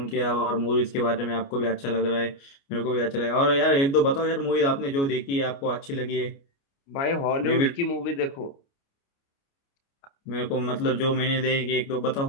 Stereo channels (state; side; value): late; right; 29 ms